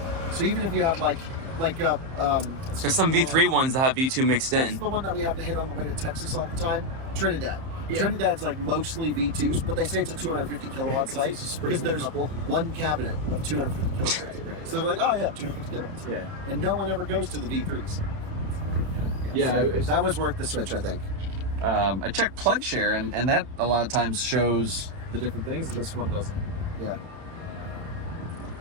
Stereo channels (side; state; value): left; late; 30 ms